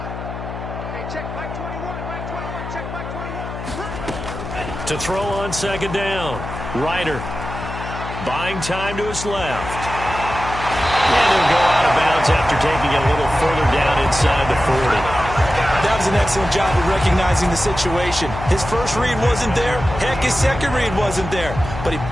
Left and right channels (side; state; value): left; noise; hum, 8 dB below the sound